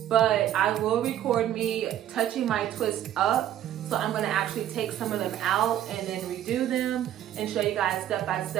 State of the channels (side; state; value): left; quieter; 11.6 dB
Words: but I will record me touching my twist up. So I'm gonna actually take some of them out and then redo them and show you guys step by